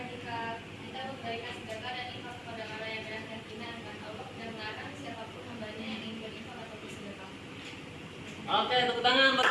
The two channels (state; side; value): identical; both; correlation 1.00